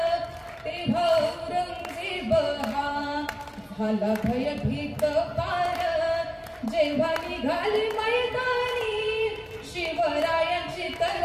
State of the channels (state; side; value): identical; both; correlation 1.00